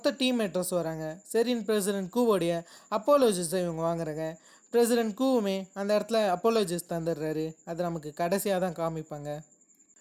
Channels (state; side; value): identical; both; correlation 1.00